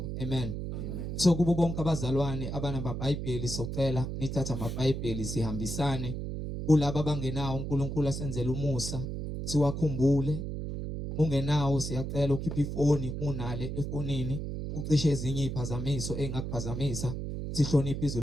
Amen. So kubo bonke abazalwane abanamabhayibheli socela nithatha amabhayibheli sihambisane kulabo abangenawo uNkulunkulu asenzele umusa siwakhumbule. Ungenawo siyacela ukhiphe ifoni, unale efonini ucishe ezinye iziphazamiso engakuphazamisa, sihloniphe izwi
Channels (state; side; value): noise; right; hum, 5 dB below the sound